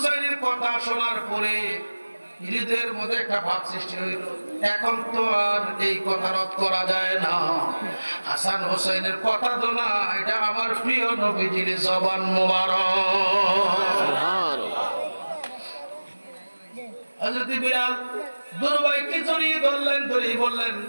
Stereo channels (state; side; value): inverted; both; correlation -1.00